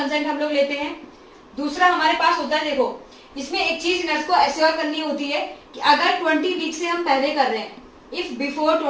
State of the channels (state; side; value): identical; both; correlation 1.00